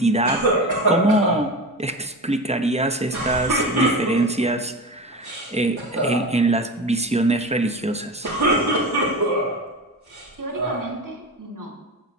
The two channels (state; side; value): normal; both; correlation 0.27